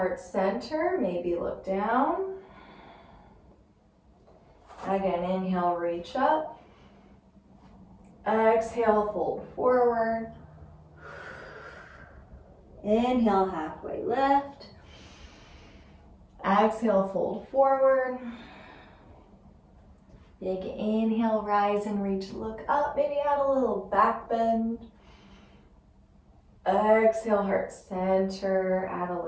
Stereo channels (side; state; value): both; identical; correlation 1.00